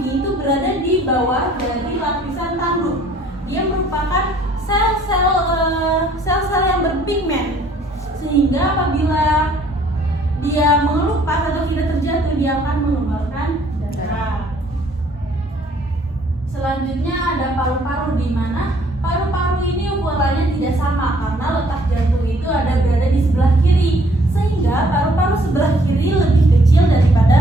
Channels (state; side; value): normal; both; correlation 0.61